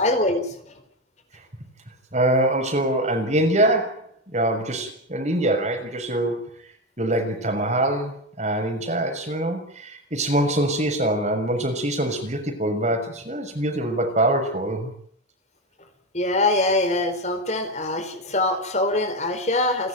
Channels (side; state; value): both; normal; correlation 0.15